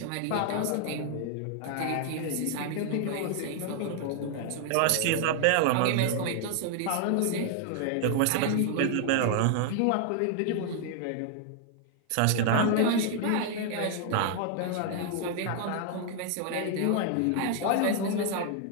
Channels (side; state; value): both; different; correlation 0.00